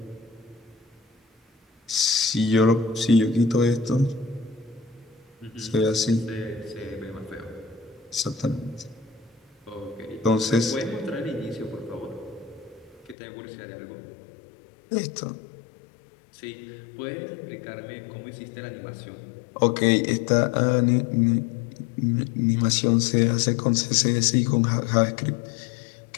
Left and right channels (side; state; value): right; drops out; at 13.2 s